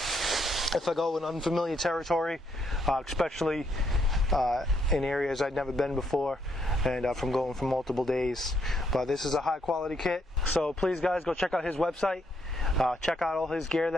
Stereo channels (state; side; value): normal; both; correlation 0.74